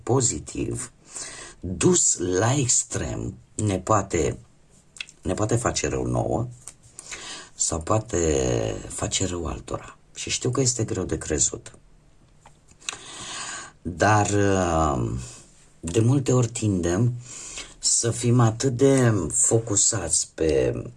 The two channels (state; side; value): identical; both; correlation 1.00